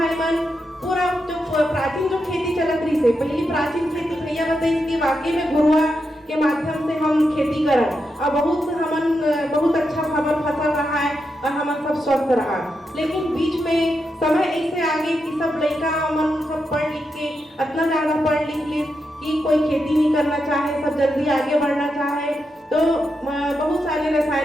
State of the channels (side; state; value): both; normal; correlation 0.85